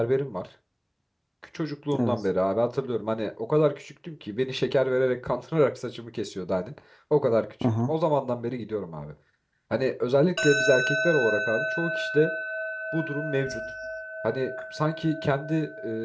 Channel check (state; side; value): identical; both; correlation 1.00